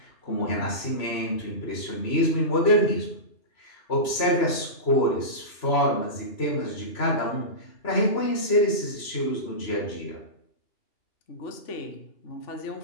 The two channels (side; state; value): right; late; 3.0 ms